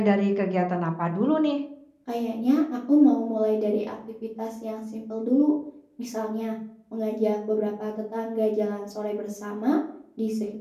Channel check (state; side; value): identical; both; correlation 1.00